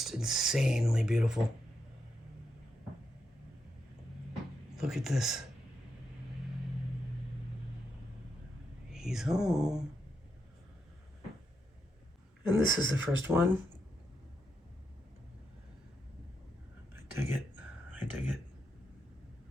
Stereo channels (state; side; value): normal; both; correlation 0.83